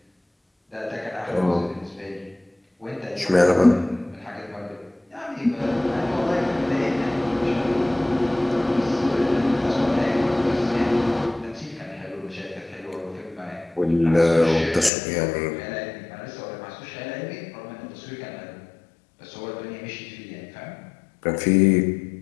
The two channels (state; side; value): drops out; right; at 14.9 s